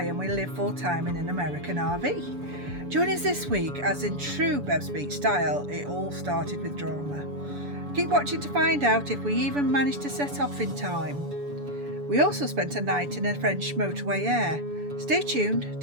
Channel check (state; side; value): late; left; 7.0 ms